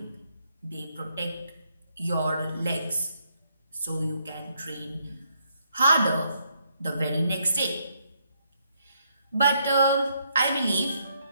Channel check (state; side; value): inverted; both; correlation -0.74